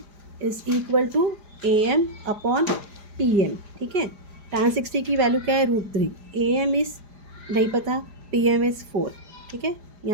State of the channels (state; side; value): late; left; 4.9 ms